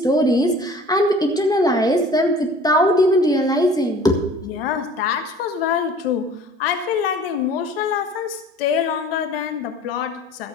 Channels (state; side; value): normal; both; correlation 0.47